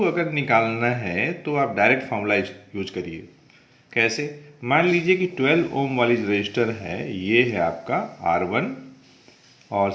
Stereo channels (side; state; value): both; identical; correlation 1.00